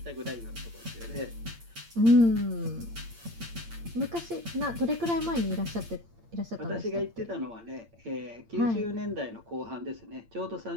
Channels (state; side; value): late; left; 8.7 ms